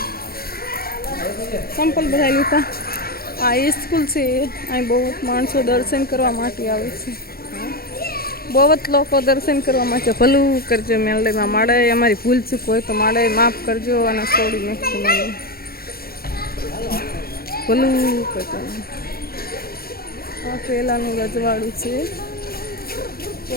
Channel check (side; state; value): right; late; 0.44 ms